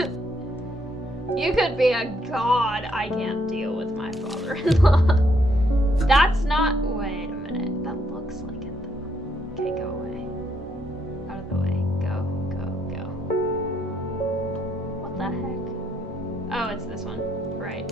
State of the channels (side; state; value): both; normal; correlation 0.73